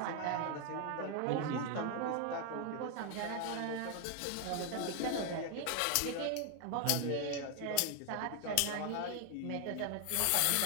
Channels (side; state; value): both; different; correlation 0.00